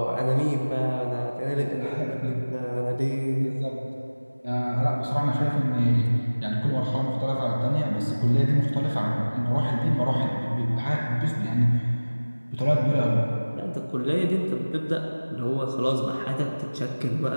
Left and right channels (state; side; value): inverted; both; correlation -1.00